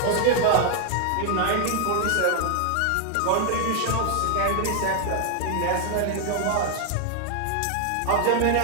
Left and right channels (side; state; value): both; different; correlation 0.00